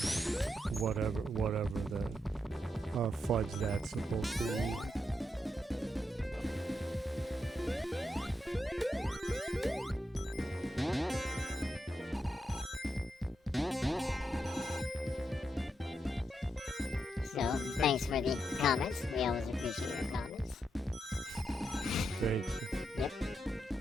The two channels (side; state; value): both; normal; correlation 0.83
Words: Whatever that fudge that's supposed to be. So, thanks for the comments. We always appreciate your comments. Thank you. Yep.